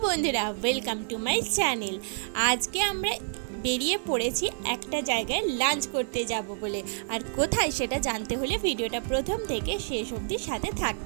বন্ধুরা, ওয়েলকাম টু মাই চ্যানেল। আজকে আমরা বেরিয়ে পড়েছি একটা জায়গায় লাঞ্চ করতে যাব বলে। আর কোথায় সেটা জানতে হলে ভিডিওটা প্রথম থেকে শেষ অবধি সাথে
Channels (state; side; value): silent; left; digital silence